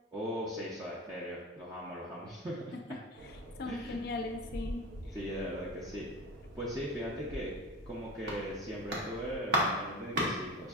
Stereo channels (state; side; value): normal; both; correlation 0.29